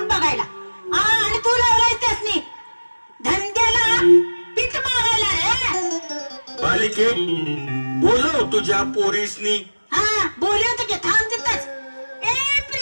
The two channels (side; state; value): both; inverted; correlation -1.00